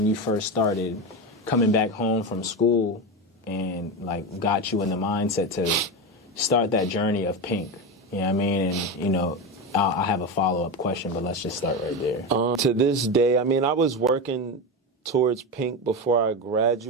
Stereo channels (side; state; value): both; normal; correlation 0.17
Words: you first started coming back home from school and, like, got you in the mindset to start that journey of Pink? You know what I mean? And, you know, I have a follow-up question, but let's just start right there. To this day, I mean, I was working towards Pink before I